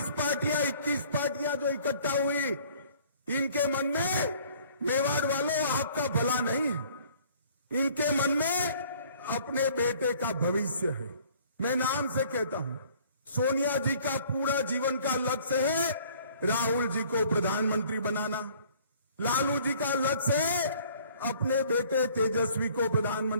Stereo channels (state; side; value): inverted; both; correlation -0.55